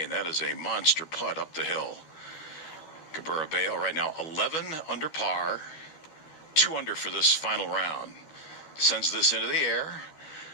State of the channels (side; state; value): right; late; 12 ms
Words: That is a monster putt up the hill. Cabrera-Bello right now 11 under par, 2 under for this final round. Sends this into the air,